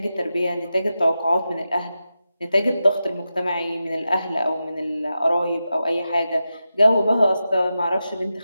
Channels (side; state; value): both; inverted; correlation -0.90